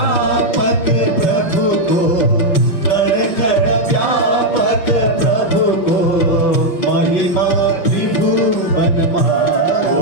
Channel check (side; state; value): right; late; 5.8 ms